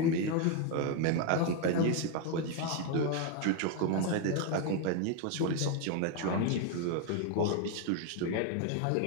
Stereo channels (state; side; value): different; both; correlation 0.01